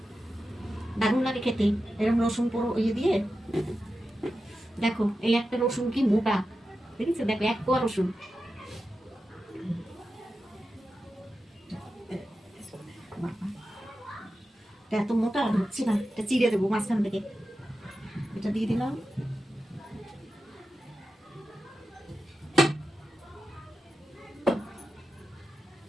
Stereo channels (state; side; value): normal; both; correlation 0.91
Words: দারুণ লাগে খেতে এরকম রসুন পুরো ইয়ে দিয়ে। দেখো এই একটা রসুন কি মোটা, দেখেছো? দেখো এক কোয়া রসুন, এত মোটা ঢুকছে না, এটা চিড়ে দেবো মাঝখান থেকে। এটা দিয়ে দিলাম,